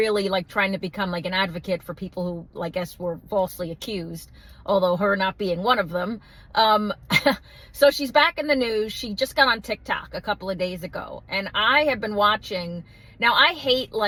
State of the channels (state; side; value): identical; both; correlation 1.00